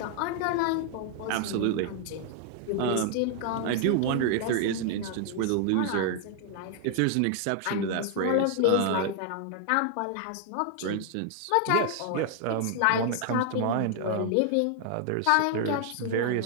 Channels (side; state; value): both; different; correlation 0.00